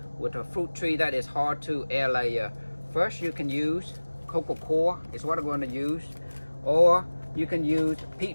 fruit tree that is hard to air layer. First, you can use cocoa coir is what I'm going to use, or you can use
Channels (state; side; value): inverted; both; correlation -1.00